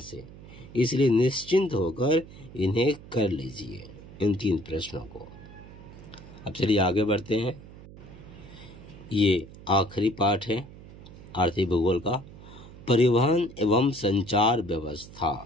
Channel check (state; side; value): noise; right; hum, 18 dB below the sound